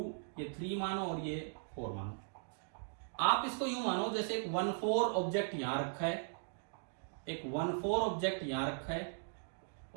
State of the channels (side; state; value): left; silent; digital silence